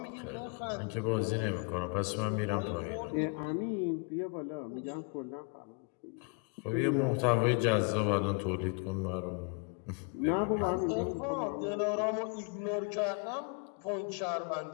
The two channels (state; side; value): quieter; right; 36.3 dB